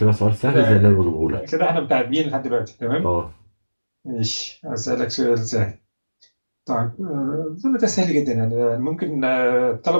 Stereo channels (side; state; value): both; inverted; correlation -1.00